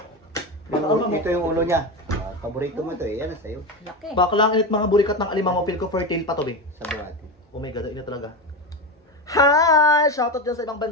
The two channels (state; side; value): normal; both; correlation 0.18